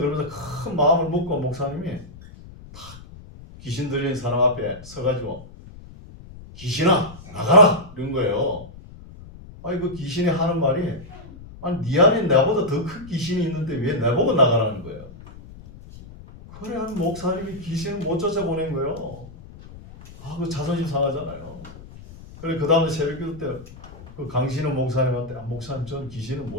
큰 마음을 먹고 목사님이 딱 귀신 들린 사람 앞에 서가지고 귀신아 나가라 이런 거예요. 그 귀신이 하는 말이 네 안에 나보다 더 큰 귀신이 있는데 왜 나보고 나가라는 거예요. 그래 한 목사님이 귀신을 못 쫓아보낸 거예요. 그 자존심 상하잖아요. 그래 그 다음에 새벽기도 때 그 강신호 목사님한테 목사님 전 귀신을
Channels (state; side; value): noise; left; rumble, 17 dB below the sound